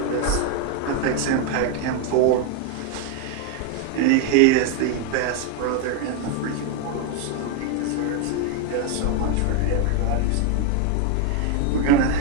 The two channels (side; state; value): both; different; correlation 0.01